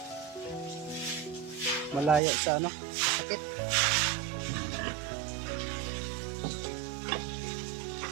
malayo sa sakit.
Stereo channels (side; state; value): left; drops out; at 2.2 s